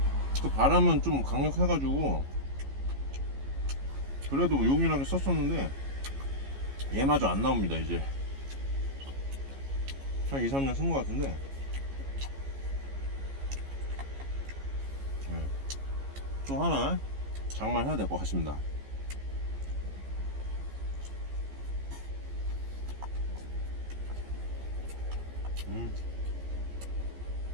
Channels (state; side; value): late; left; 15 ms